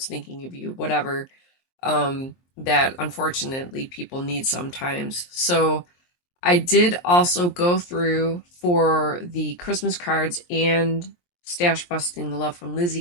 thinking of you, whatever, that unfortunately people need sometimes. So I did also go through for the Christmas cards and stash busting the Love from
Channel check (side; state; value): right; late; 23 ms